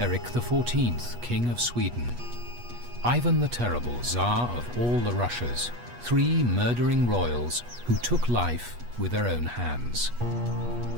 XIV, King of Sweden. Ivan the Terrible, Tsar of all the Russias. 3 murdering royals who took life with their own hands.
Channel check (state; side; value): late; left; 8.3 ms